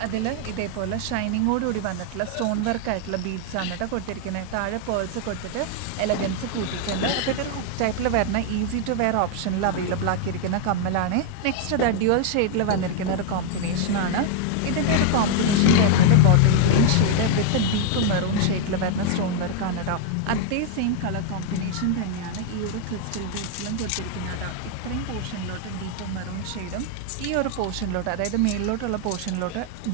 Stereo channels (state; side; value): different; both; correlation 0.00